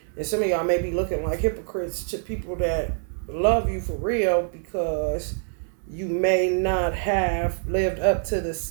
And some of y'all may be looking like hypocrites to people that love you for real because you may not have lived up to the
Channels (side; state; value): left; silent; digital silence